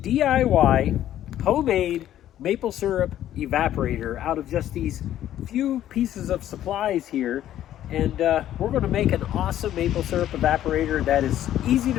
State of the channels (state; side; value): quieter; right; 12.2 dB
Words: DIY homemade maple syrup evaporator out of just these few pieces of supplies here. And we're going to make an awesome maple syrup evaporator that is easy